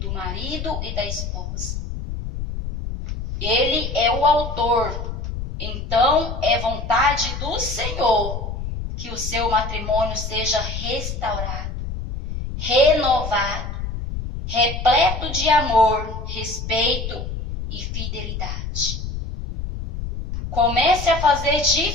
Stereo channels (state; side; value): noise; left; rumble, 6 dB below the sound